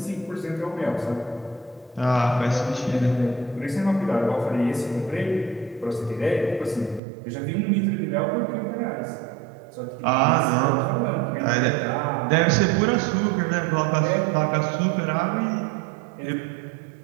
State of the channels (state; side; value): drops out; left; at 7.0 s